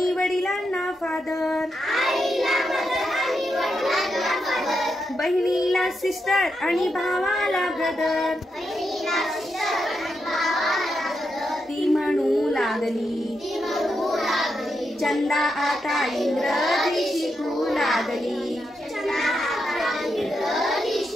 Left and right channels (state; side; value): normal; both; correlation 0.84